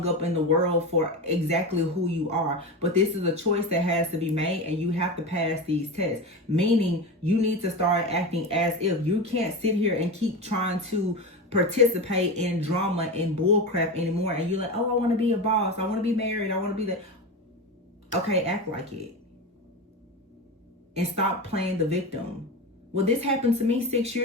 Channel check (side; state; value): both; normal; correlation 0.23